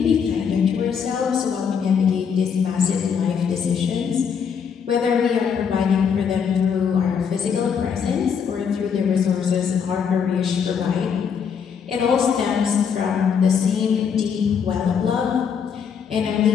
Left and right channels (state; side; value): quieter; right; 6.9 dB